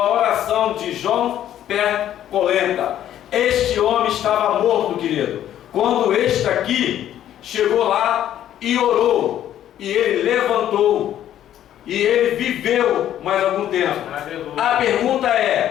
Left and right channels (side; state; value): right; quieter; 11.4 dB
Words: oração de João Percolenta. Este homem estava morto, querido, quando este aqui chegou lá e orou, e ele levantou, e ele viveu mais algum tempo. A pergunta